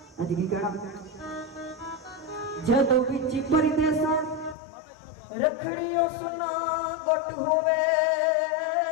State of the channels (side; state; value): right; drops out; at 4.5 s